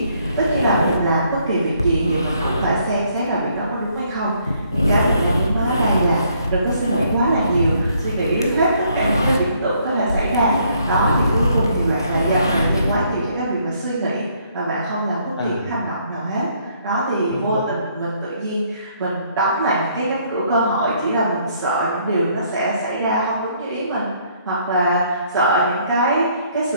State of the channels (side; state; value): both; inverted; correlation -0.67